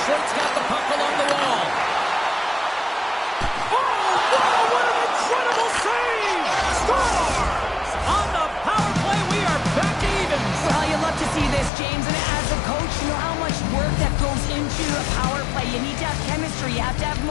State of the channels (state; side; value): drops out; right; at 11.7 s